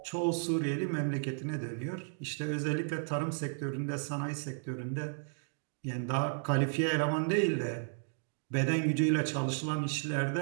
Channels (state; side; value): silent; left; digital silence